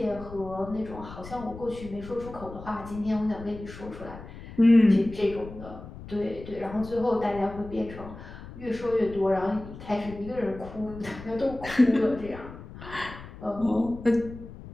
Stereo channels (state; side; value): noise; left; rumble, 14 dB below the sound